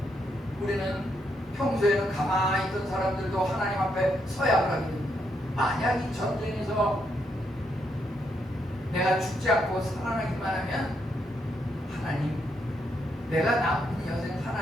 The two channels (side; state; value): both; normal; correlation 0.78